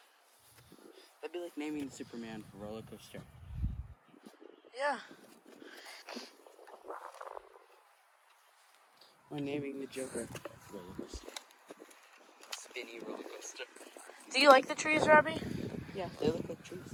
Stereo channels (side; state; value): both; identical; correlation 1.00